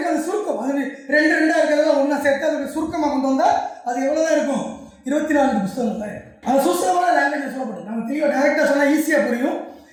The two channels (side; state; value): both; identical; correlation 1.00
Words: அது சுருக்கம், அது 2 இருக்கிறதெல்லாம் ஒன்றா சேர்த்து அதோட சுருக்கமாக கொண்டு வந்தால் அது எவ்வளோதான் இருக்கும், 24 புஸ்தகங்கள் தான் இருக்கும். அது சுசலமான லாங்குவேஜ் சொல்லப்படும். நம்ம தெளிவாக டைரெக்டாக சொன்னால் ஈஸியாக புரியும்.